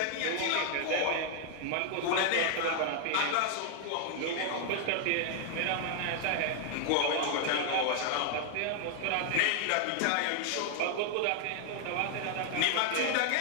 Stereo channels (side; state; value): both; different; correlation 0.00